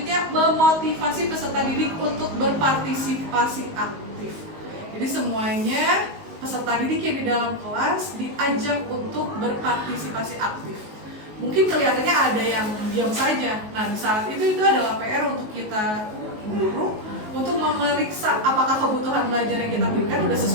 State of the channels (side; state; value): left; late; 19 ms